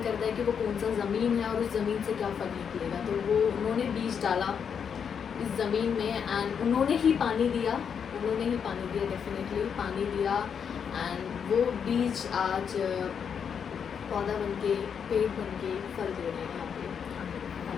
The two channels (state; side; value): quieter; right; 7.2 dB